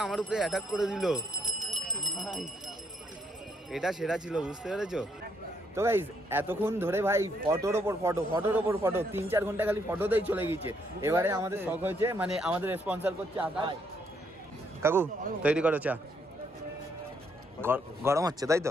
আমার উপরে অ্যাটাক করে দিল। এটা সেরা ছিল, বুঝতে পেরেছো? তো গাইস এতক্ষণ ধরে ভাই ফটোর ওপর ফটো, ফটোর ওপর ফটো, 3-4 ঘন্টা খালি ফটোতেই চলে গিয়েছে। এবারে আমাদের শখ হয়েছে, মানে আমাদের স্পন্সর করছে আকাশ। কাকু তৈরি করো চা। গরম হচ্ছে তাই তো?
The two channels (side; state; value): both; normal; correlation 0.73